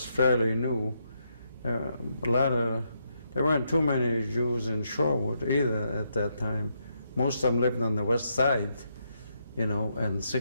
fairly new. There weren't too many Jews in Shorewood either at that time. Most of them lived on the west side, you know, and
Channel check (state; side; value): inverted; both; correlation -0.79